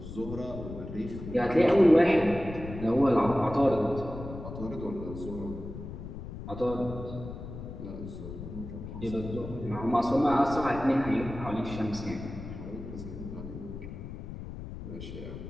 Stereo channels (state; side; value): noise; left; rumble, 10 dB below the sound